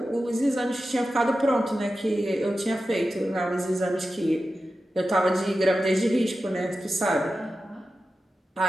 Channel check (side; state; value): both; normal; correlation 0.93